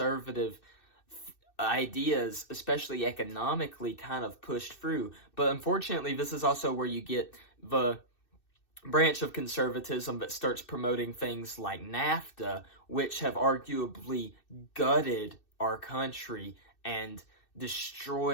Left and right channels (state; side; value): late; right; 2.6 ms